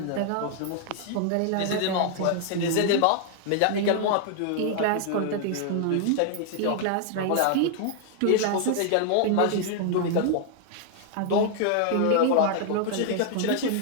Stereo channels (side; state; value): both; different; correlation 0.00